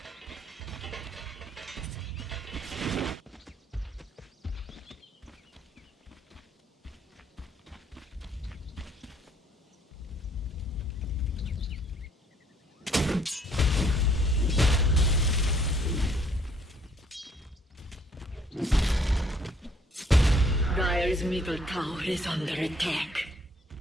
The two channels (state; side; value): normal; both; correlation 0.63